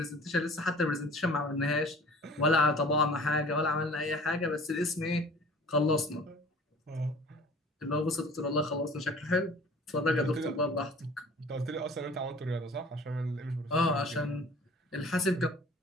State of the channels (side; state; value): both; normal; correlation 0.47